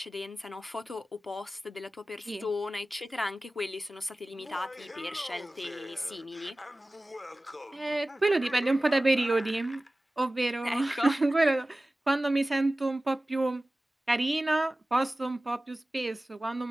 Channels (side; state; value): both; normal; correlation 0.97